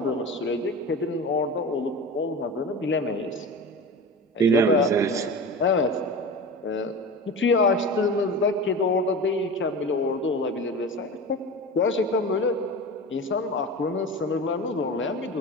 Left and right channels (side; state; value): both; normal; correlation 0.30